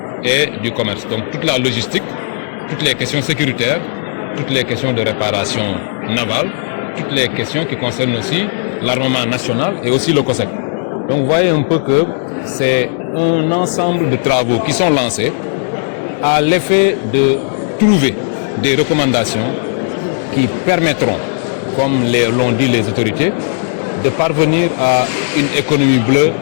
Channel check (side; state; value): right; silent; digital silence